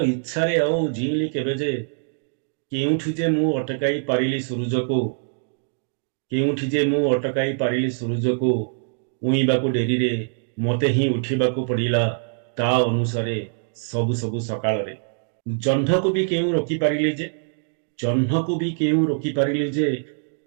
ଇଚ୍ଛାରେ ଆଉ ଜିଇଁଲି କେବେ ଯେ କେଉଁଠି ଯେ ମୁଁ ଅଟକାଇ ପାରିଲି ସୂରୁଜକୁ କେଉଁଠି ଯେ ମୁଁ ଅଟକାଇ ପାରିଲି ସୂରୁଜକୁ ଉଇଁବାକୁ ଡେରିରେ ମୋତେ ହିଁ ଉଠିବାକୁ ପଡ଼ିଲା ତା ଅନୁସାରେ ସବୁ ସବୁ ସକାଳରେ ଜହ୍ନକୁ ବି କେଉଁ ରୋକିପାରିଲି ଯେ ଜହ୍ନକୁ ବି କେଉଁ ରୋକିପାରିଲି ଯେ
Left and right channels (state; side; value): silent; left; digital silence